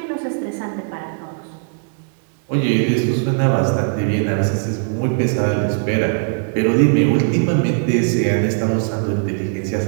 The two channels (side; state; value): left; silent; 66 dB below the other